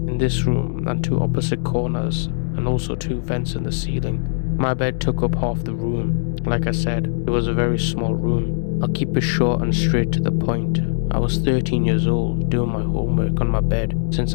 in this room and 2 opposite corners, and also 2 vents in the ceiling. My bed took up half the room. Like I said, it was a very small room. I'll keep it short and straight to the point. I was 13 years old, doing my homework on my bed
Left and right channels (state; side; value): silent; right; digital silence